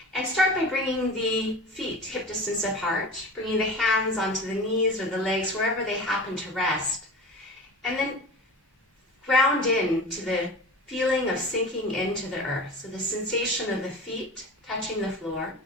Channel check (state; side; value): normal; both; correlation 0.35